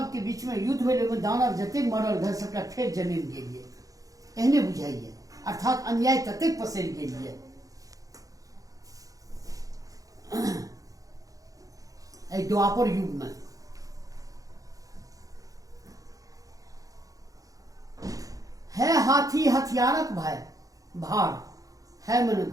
के बीच में युद्ध भेल, ओहिमे दानव जतेक मरल रहे सबटा फेर जन्म गेलिए, एहने बुझाइए। अर्थात अन्याय ततेक पसरि गेलिए। एहि द्वापर युग में है हाथी हथियारक भाई भार, है मन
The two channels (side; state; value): left; late; 0.17 ms